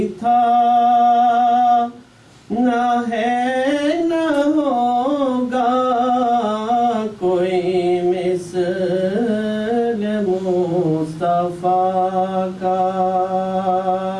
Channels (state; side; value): identical; both; correlation 1.00